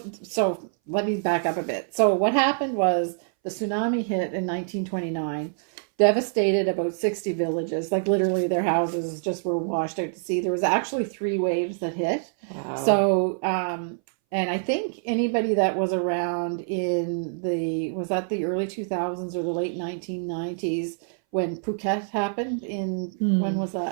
let me back up a bit. So what happened was the tsunami hit in 1929, devastated about 60 villages. Like literally their houses just were washed out to sea. There was actually 3 waves that hit. Wow. So, and I think anybody that was around was that the early 2000s or the late 1990s when Phuket happened when was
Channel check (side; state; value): left; silent; 59 dB below the other